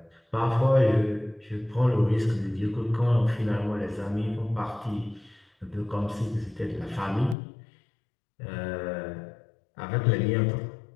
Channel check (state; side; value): drops out; right; at 7.4 s